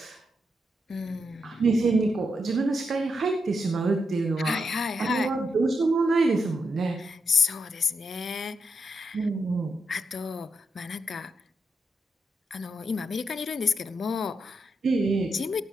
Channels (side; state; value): both; normal; correlation 0.83